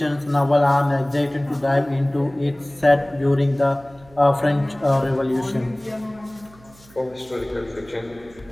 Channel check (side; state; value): right; noise; hum, 25 dB below the sound